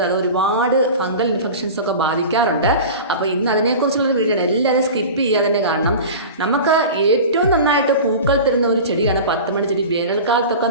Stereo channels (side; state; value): both; inverted; correlation -0.33